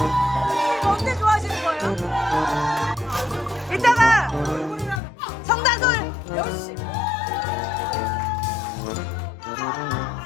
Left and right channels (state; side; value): drops out; right; at 5.0 s